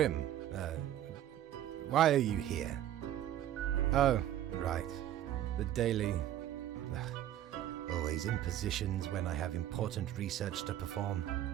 why are you here? Oh, right. The daily... always impositions when I have important research to perform.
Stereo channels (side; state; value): left; quieter; 12.0 dB